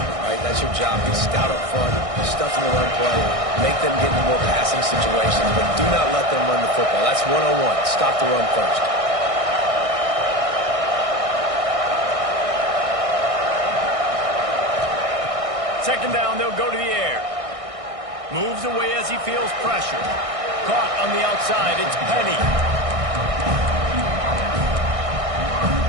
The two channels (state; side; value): late; left; 1.6 ms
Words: right? That's your job. Be stout up front, stuff in the run play, make them get into more passing situations, but do not let them run the football. That's 101. Stop the run first. Second down, they'll go to the air. Moves away as he feels pressure. Caught on the outside, it's Penny.